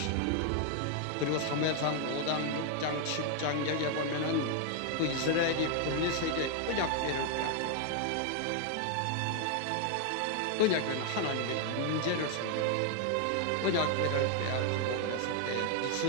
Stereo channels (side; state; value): both; different; correlation 0.00